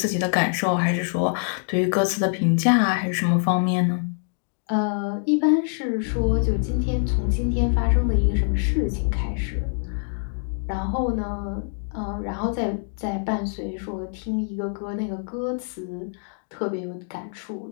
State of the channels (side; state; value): right; silent; digital silence